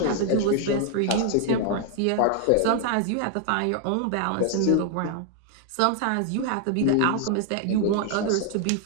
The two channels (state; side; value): different; both; correlation 0.00